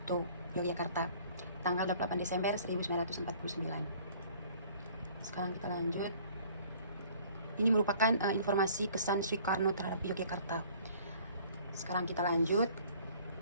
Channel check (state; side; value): inverted; both; correlation -0.54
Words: Yogyakarta, tanggal 28 Desember 1949. Sekarang kita lanjut. Ini merupakan informasi kesan Soekarno terhadap Yogyakarta. Sekarang kita lanjut.